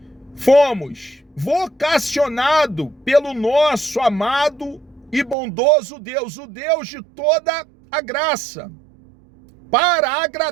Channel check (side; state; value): left; drops out; at 5.4 s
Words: fomos vocacionado pelo nosso amado e bondoso Deus, o Deus de toda a graça, para